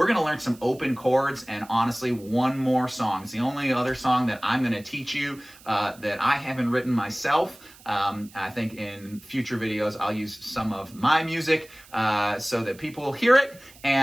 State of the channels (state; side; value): noise; right; hiss, 23 dB below the sound